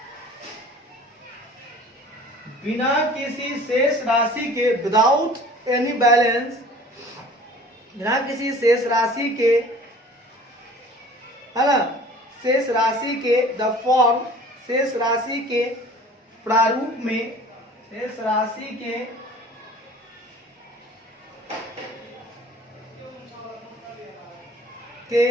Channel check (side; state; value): both; normal; correlation 0.46